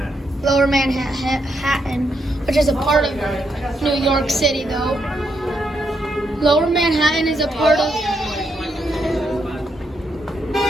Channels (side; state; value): both; normal; correlation 0.79